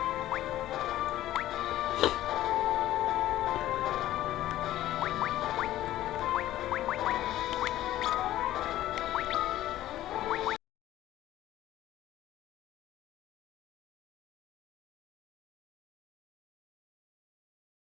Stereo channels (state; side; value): quieter; right; 14.1 dB